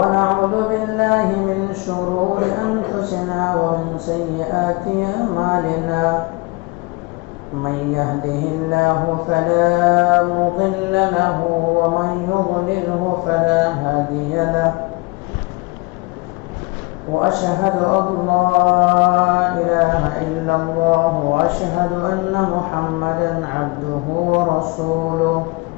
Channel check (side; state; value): right; quieter; 26.2 dB